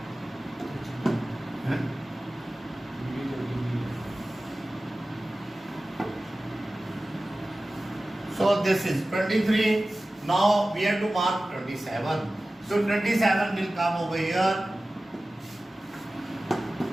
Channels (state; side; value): normal; both; correlation 0.96